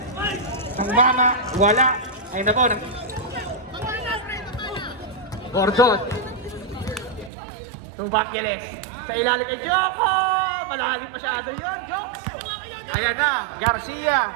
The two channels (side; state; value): left; drops out; at 7.3 s